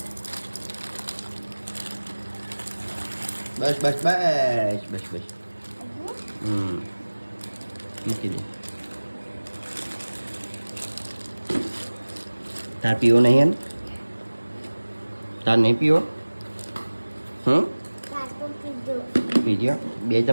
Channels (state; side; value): inverted; both; correlation -1.00